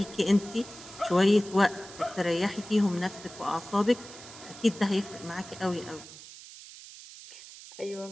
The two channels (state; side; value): noise; right; hiss, 16 dB below the sound